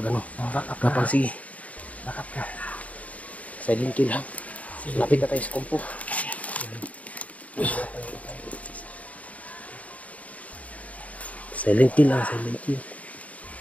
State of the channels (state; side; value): late; right; 0.069 ms